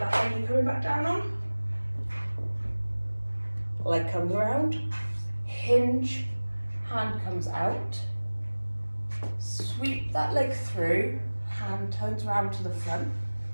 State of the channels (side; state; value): both; inverted; correlation -1.00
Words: leg you're coming back down on. Leg comes around, hinge, hand comes out. Sweep that leg through, hand turns around to the front,